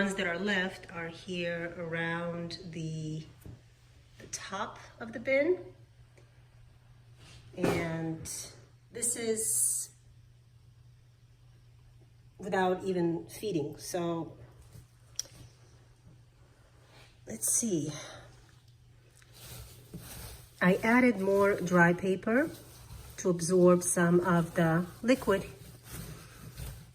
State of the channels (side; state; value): both; identical; correlation 1.00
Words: that are left are here around the top of the bin. And this is without even feeding. So let's see. I added more dry paper to absorb some of the liquid.